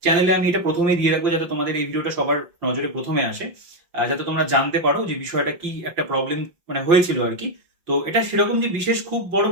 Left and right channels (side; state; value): left; late; 5.8 ms